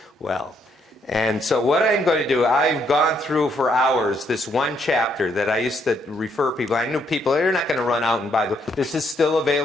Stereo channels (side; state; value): both; normal; correlation 0.72